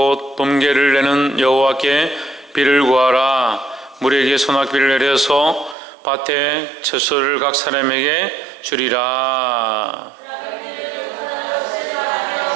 봄개를 내는 여호와께 비를 구하라. 물에게 소낙비를 내려서 밭에 채소를 각 사람에게 주리라.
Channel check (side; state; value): left; drops out; at 5.8 s